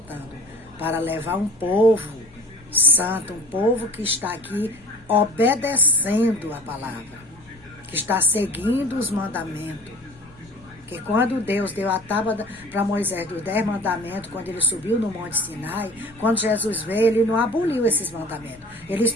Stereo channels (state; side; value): noise; left; rumble, 25 dB below the sound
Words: para levar um povo santo, um povo que está aqui obedecendo a palavra, que está seguindo os mandamentos. Que quando Deus deu a tábua para Moisés dos 10 mandamentos, quando ele subiu no Monte Sinai, quando Jesus veio, ele não aboliu esses mandamentos. Eles